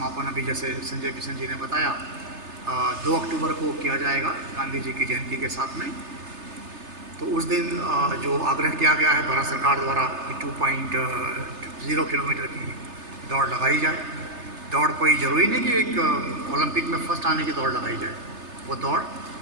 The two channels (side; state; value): left; late; 3.3 ms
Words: अभी जैसे संजय किशन जी ने बताया 2 अक्टूबर को किया जाएगा गांधी जी की जयंती के साथ में। तो उस दिन जो आग्रह किया गया है भारत सरकार द्वारा कि 2.0 किलोमीटर की दौड़ लगाई जाए। दौड़ कोई ज़रूरी नहीं कि एक ओलंपिक में फर्स्ट आने की दौड़ लगाई जाए, वो दौड़